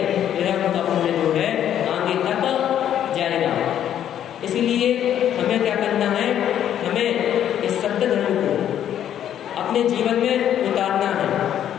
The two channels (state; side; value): quieter; right; 10.4 dB